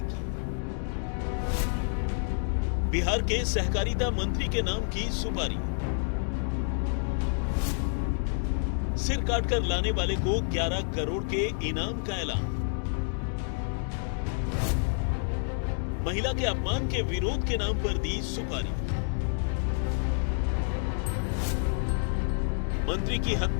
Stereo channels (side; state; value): right; silent; digital silence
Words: की। बिहार के सहकारिता मंत्री के नाम की सुपारी। सिर काट कर लाने वाले को 11 करोड़ के इनाम का ऐलान। महिला के अपमान के विरोध के नाम पर दी सुपारी। मंत्री की